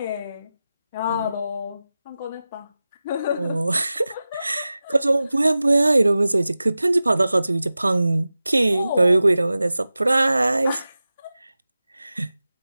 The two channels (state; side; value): inverted; both; correlation -0.95